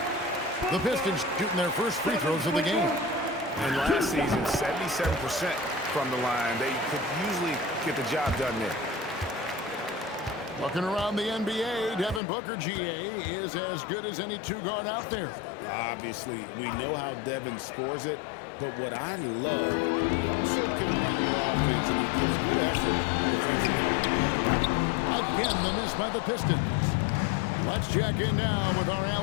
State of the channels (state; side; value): drops out; right; at 12.2 s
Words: The Pistons shooting their first free throws of the game. And last season, 77% from the line. They could usually get the job done there. Looking around the NBA, Devin Booker, GA, is as good as any two-guard out there. Obviously, we know how Devin scores it, but what I love, he also can run your offense, and he gives good effort defensively. Again, the miss by the Pistons. Let's check in now with our